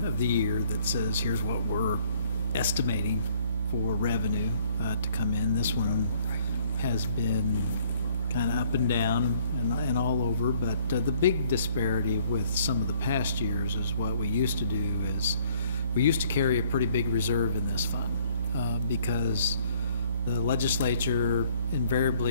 of the year that says, here's what we're estimating for revenue to come in. This one has been kind of up and down and all over, but the big disparity with some of the past years is what we used to do is we used to carry a pretty big reserve in this fund because the legislature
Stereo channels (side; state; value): both; inverted; correlation -0.61